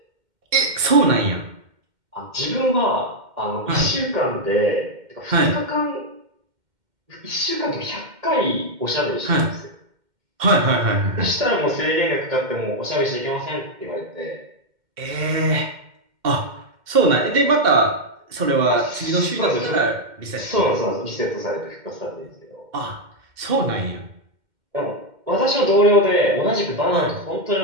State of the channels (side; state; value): left; late; 2.1 ms